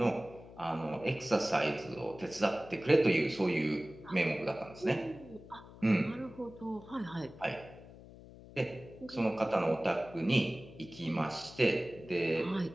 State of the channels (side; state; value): left; noise; hum, 18 dB below the sound